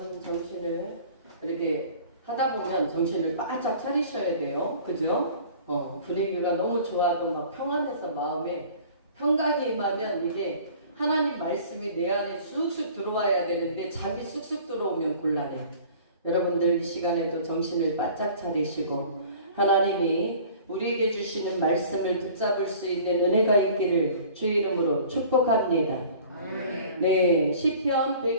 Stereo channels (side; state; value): both; inverted; correlation -0.47